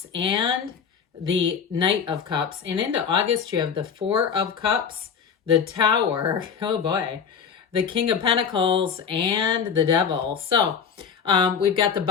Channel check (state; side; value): quieter; right; 6.8 dB